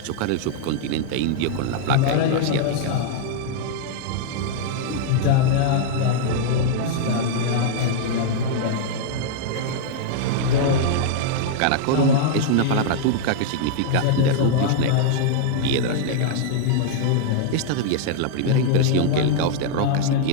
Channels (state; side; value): different; both; correlation -0.01